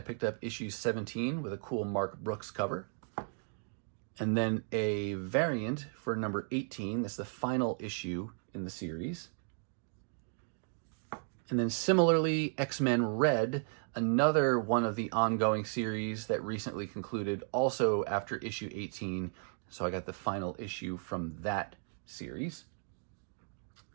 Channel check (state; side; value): silent; left; 54 dB below the other